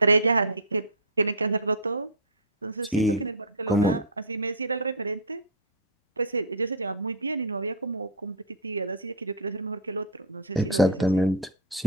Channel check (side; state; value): both; normal; correlation -0.11